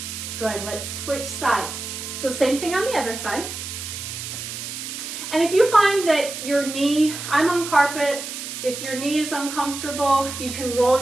Good, let's switch sides. So same thing on the other side. And if you find that your knee, I'm on carpet, if your knee is uncomfortable, you can roll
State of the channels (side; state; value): right; noise; hiss, 8 dB below the sound